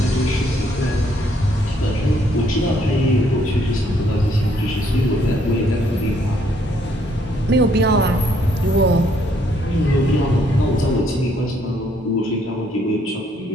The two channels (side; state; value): both; normal; correlation 0.69